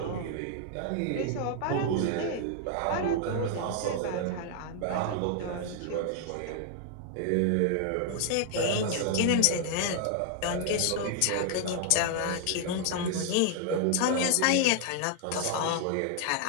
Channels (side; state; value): both; different; correlation 0.00